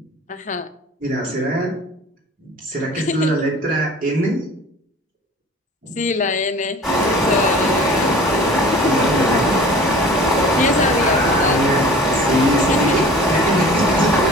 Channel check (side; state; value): both; normal; correlation 0.44